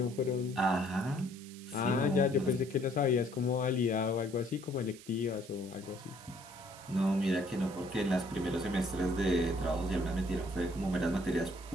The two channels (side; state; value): right; noise; hiss, 19 dB below the sound